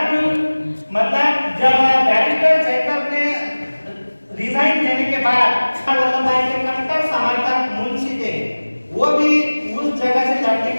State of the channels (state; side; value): inverted; both; correlation -1.00